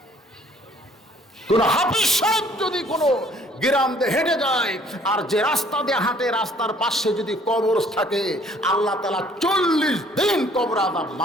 কোন হাফেজ সাহেব যদি কোনো গ্রাম দিয়ে হেঁটে যায়, আর যে রাস্তা দিয়ে হাঁটে রাস্তার পাশে যদি কবর থাকে, আল্লাহ তাআলা 40 দিন কবর আযাব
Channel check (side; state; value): both; normal; correlation 0.59